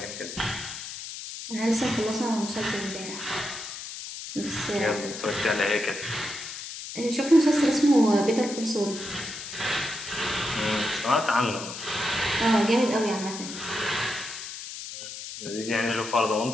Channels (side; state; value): left; noise; hiss, 9 dB below the sound